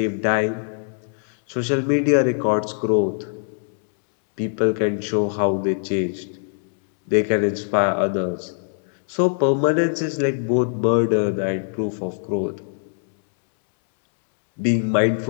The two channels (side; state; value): right; silent; 64 dB below the other